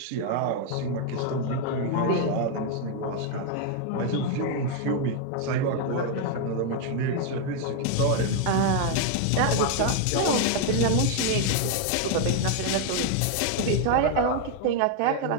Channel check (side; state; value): both; different; correlation 0.00